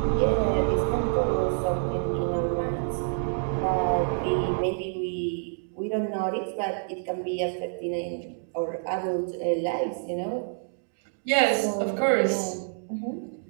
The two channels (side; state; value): left; silent; digital silence